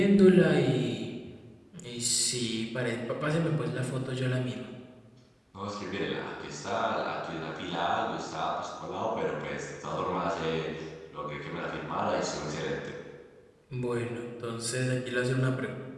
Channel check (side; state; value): both; identical; correlation 1.00